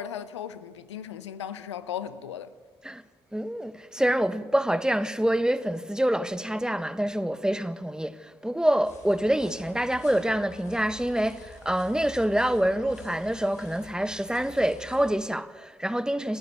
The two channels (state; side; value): normal; both; correlation 0.95